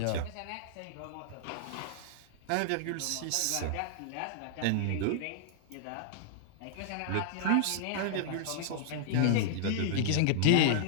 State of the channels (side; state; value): both; different; correlation -0.01